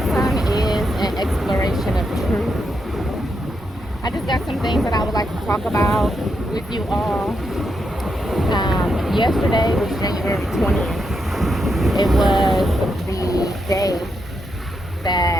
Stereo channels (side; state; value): both; normal; correlation 0.82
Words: is an exploration of truth. I just got some things that I would like to talk about with you all. Yesterday was January 20th. It was the day